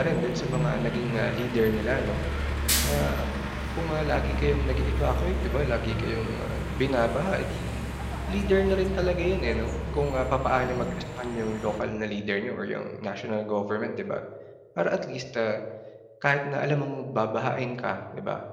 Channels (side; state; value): both; identical; correlation 1.00